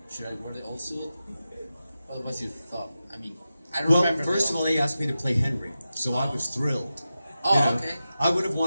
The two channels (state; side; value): inverted; both; correlation -0.92